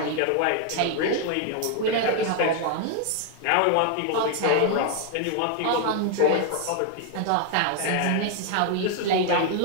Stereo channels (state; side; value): different; both; correlation 0.00